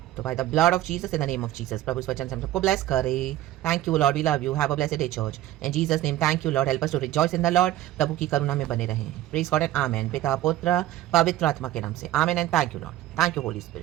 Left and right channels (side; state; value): left; quieter; 14.2 dB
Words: तो by the blood of Jesus, in the name of Jesus, प्रभु इस वचन से हम सबको ब्लेस करे। Thank you lord, we love you, have a blessed day church in Jesus name. Thank you lord, help us to rejoice in the lord. प्रभु की करुणा में बने रहें। Praise God and amen. पिता पुत्र पवित्र आत्मा के नाम से amen and thank you lord, thank you Holi